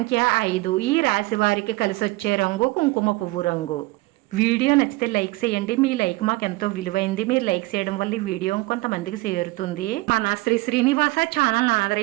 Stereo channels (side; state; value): left; quieter; 21.4 dB